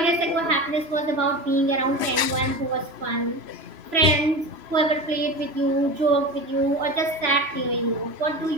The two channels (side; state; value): left; late; 3.0 ms